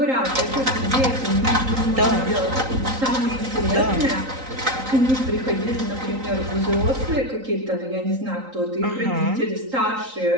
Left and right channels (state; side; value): late; left; 3.9 ms